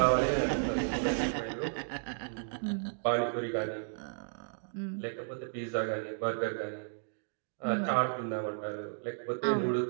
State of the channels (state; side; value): silent; left; digital silence